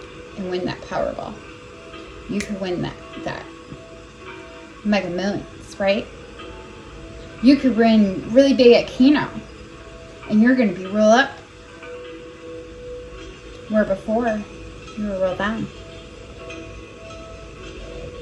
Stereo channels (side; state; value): both; identical; correlation 1.00